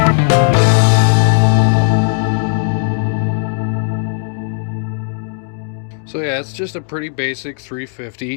So yeah, it's just a pretty basic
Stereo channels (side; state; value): right; silent; 64 dB below the other